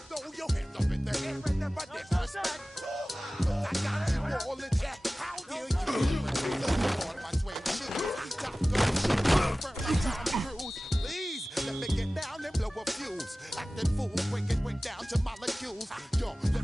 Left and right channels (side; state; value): both; normal; correlation 0.97